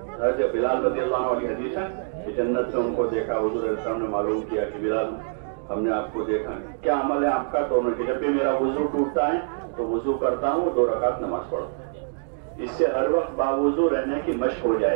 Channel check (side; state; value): left; silent; digital silence